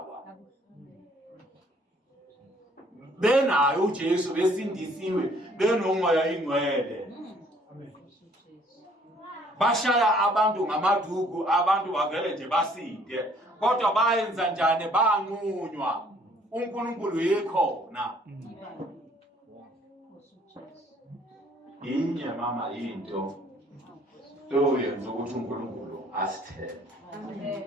Benayo uJesu besindisiwe benomoya ingcwele. Bashaya abantu ngamaduku abantu bavele nje basinde kodwa bayenza njani banqunywa uNkulunkulu yikhona. Inye mama into toyenza ukuthi uNkulunkulu asithembe.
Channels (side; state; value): both; normal; correlation 0.60